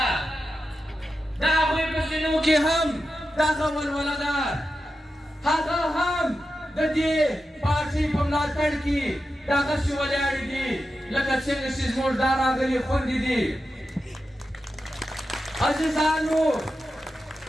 د هغوی په سینو کې هم دغه ولوله ده هغه هم د دې پارټۍ په ملاتړ کې دغسې ولاړې دي لکه څنګه چې زموږ دا راغلي خویندې دي عزیزانو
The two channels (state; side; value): normal; both; correlation 0.90